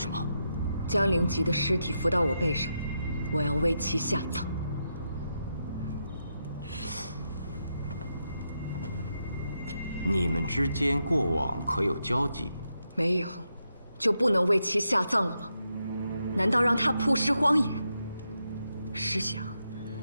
么？将灵吉的尸体扶到我背上，我要为其下葬。你们之间过往可有交集？没有，就不能为其下葬了吗？难道让他曝尸荒野？试想，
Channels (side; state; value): both; inverted; correlation -0.84